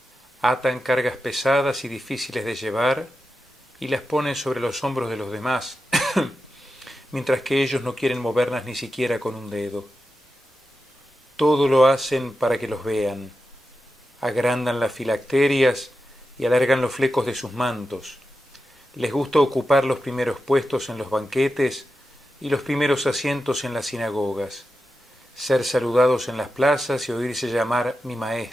Atan cargas pesadas y difíciles de llevar y las ponen sobre los hombros de los demás, mientras que ellos no quieren moverlas ni siquiera con un dedo. Todo lo hacen para que los vean. Agrandan las filacterias y alargan los flecos de sus mantos. Les gusta ocupar los primeros puestos en los banquetes y los primeros asientos en las sinagogas, ser saludados en las plazas y oírse llamar mi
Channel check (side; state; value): both; normal; correlation 0.90